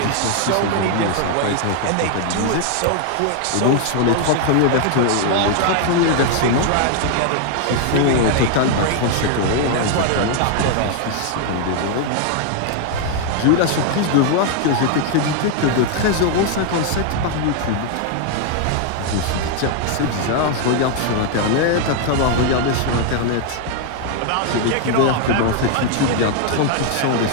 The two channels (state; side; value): different; both; correlation 0.00